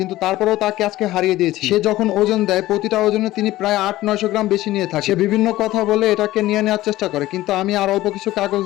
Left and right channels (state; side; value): quieter; right; 16.3 dB